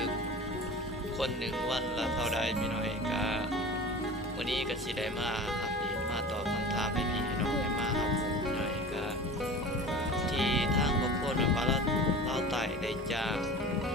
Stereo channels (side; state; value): both; normal; correlation 0.37